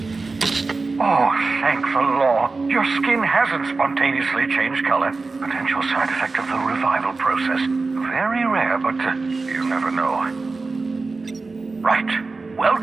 Oh, thank the law. Your skin hasn't spontaneously changed color. Potential side effect of the revival process. Very rare, but you never know. Right.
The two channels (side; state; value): left; quieter; 3.8 dB